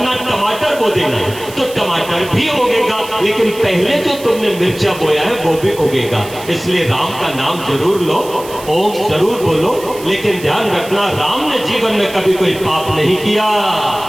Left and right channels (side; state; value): right; noise; hiss, 16 dB below the sound